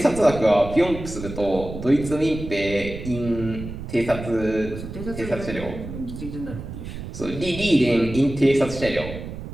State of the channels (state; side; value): noise; right; rumble, 10 dB below the sound